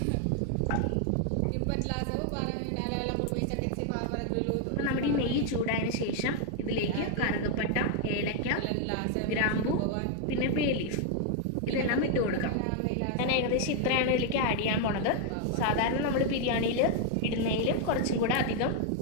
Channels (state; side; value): different; both; correlation 0.00